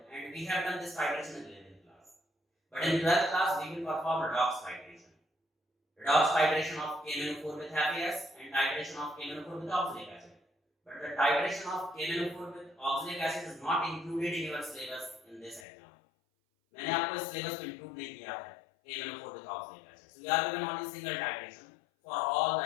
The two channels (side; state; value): right; drops out; at 15.7 s